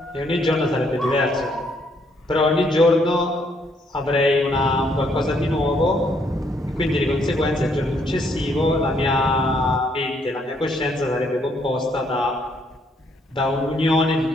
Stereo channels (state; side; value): normal; both; correlation 0.70